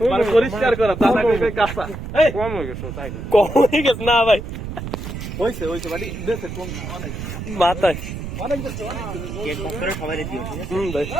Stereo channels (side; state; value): right; noise; rumble, 7 dB below the sound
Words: মানে পরিষ্কার করা, তা না কাঁচা। কম হয়ে গেছে না ভাই? হয়েছে বাড়ি দেশে কম না, অনেক মাথায় অনেক দেশে কেক ভাগ করে সবাই দিও, ঠিক আছে? ভাই